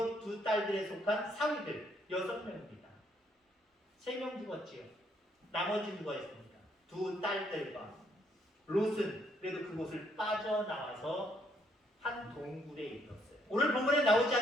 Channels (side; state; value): both; normal; correlation 0.71